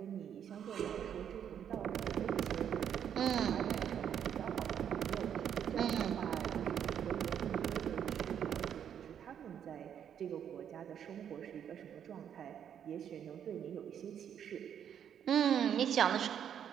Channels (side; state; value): left; quieter; 8.9 dB